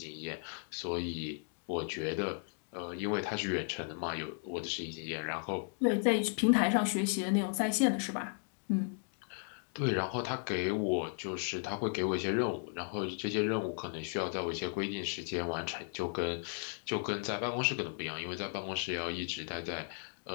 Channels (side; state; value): right; silent; 54 dB below the other